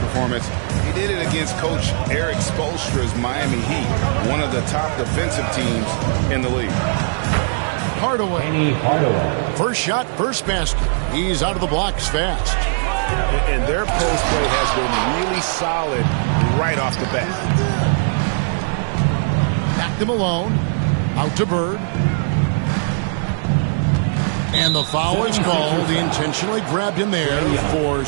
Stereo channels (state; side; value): silent; left; digital silence